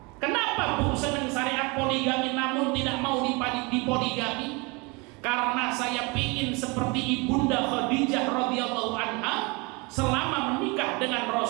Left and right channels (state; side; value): quieter; left; 28.0 dB